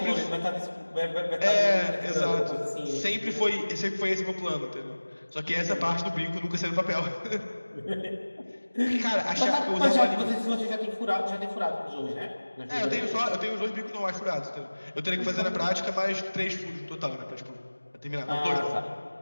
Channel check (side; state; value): both; inverted; correlation -1.00